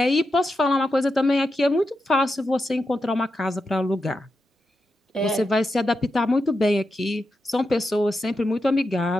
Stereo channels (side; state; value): both; normal; correlation 0.88